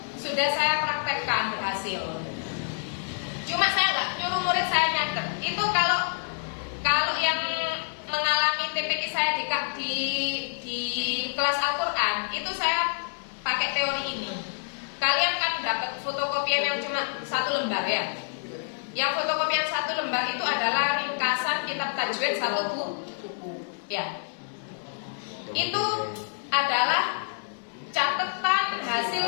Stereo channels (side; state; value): right; silent; 59 dB below the other